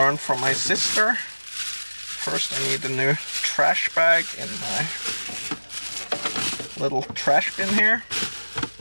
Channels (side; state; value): both; inverted; correlation -1.00